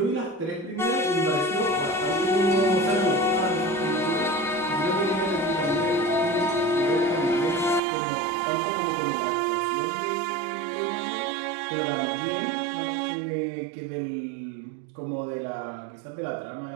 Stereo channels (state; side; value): drops out; left; at 7.8 s